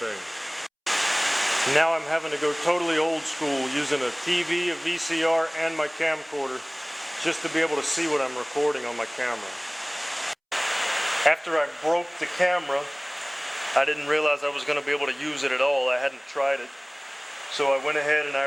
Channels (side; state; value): both; identical; correlation 1.00